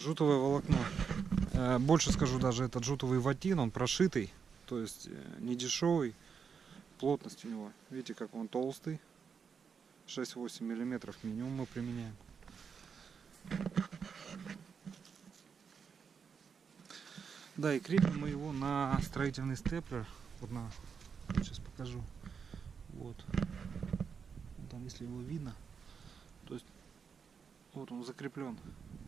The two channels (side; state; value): left; quieter; 6.3 dB